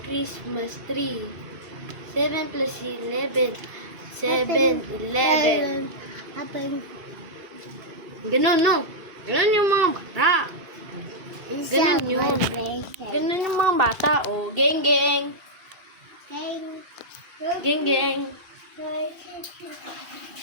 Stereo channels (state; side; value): late; left; 2.7 ms